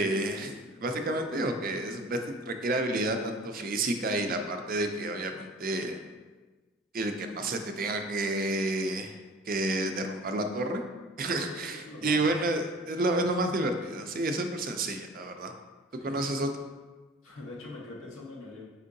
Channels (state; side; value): normal; both; correlation 0.44